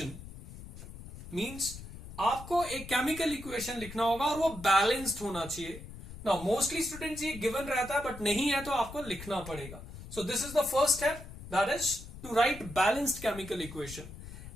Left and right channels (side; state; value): left; noise; rumble, 13 dB below the sound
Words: Means आपको एक chemical equation लिखना होगा और वो balanced होना चाहिए. Now mostly students ये given रहता है, but नहीं है तो आपको लिखना पड़ेगा. So this is the first step, that is to write balanced chemical equation.